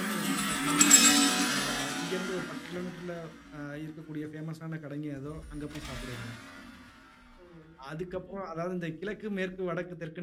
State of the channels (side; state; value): both; identical; correlation 1.00